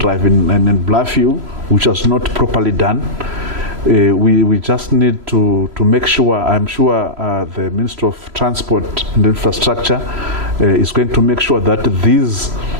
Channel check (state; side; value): late; left; 3.0 ms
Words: in Bluffview, which was not properly done. We just need to make sure, I'm sure the Minister of Transport and Infrastructure is going to make sure that these